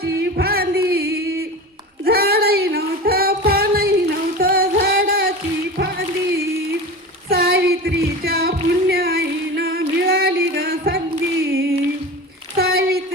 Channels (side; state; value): both; normal; correlation 0.31